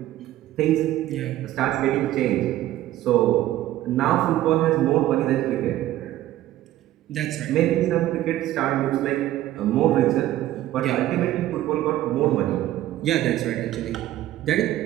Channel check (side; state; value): left; quieter; 14.1 dB